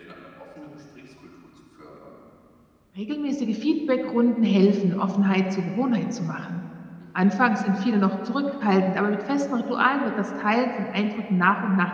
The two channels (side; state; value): both; identical; correlation 1.00